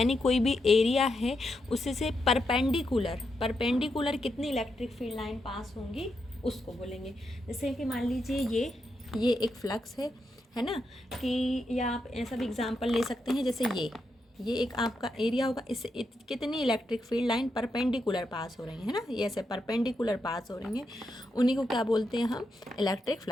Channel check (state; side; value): normal; both; correlation 0.83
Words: कोई भी एरिया है उसी से परपेंडिकुलर कितनी इलेक्ट्रिक फील्ड लाइन पास होंगी उसको बोलेंगे। जैसे कि मान लीजिए ये एक फ्लक्स है ना, कि या आप ऐसा भी एग्जांपल ले सकते हैं, जैसे ये एक आपका एरिया होगा, इससे कितनी इलेक्ट्रिक फील्ड लाइन परपेंडिकुलर पास हो रही है ना, ये ऐसे परपेंडिकुलर पास हो रही हैं, उन्हीं को क्या बोलते हैं हम? Electric